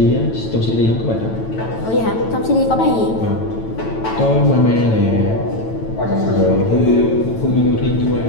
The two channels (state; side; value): late; right; 9.0 ms